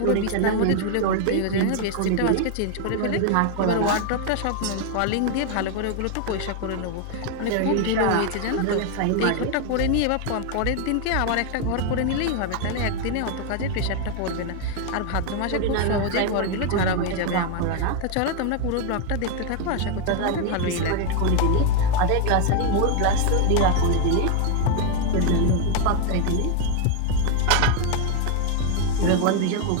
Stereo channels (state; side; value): different; both; correlation 0.01